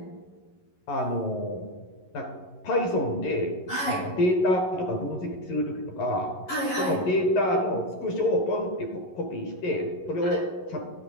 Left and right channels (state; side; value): late; right; 11 ms